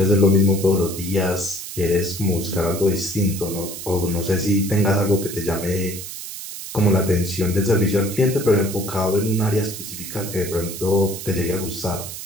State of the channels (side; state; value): right; noise; hiss, 9 dB below the sound